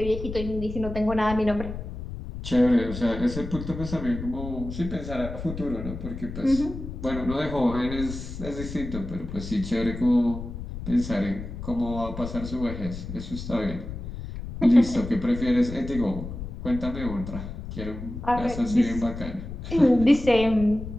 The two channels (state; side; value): noise; left; rumble, 9 dB below the sound